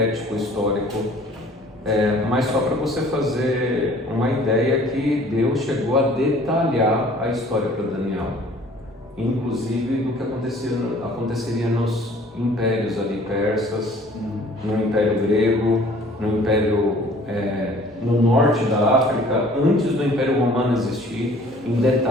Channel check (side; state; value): both; normal; correlation 0.53